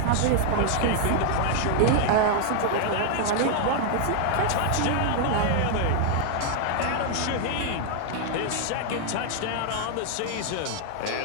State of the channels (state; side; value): different; both; correlation 0.00